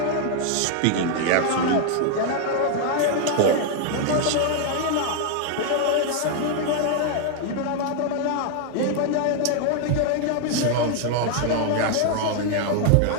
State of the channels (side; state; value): both; different; correlation 0.00